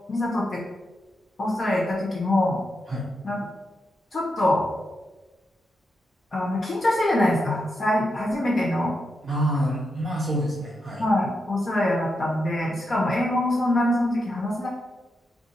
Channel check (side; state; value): both; normal; correlation 0.85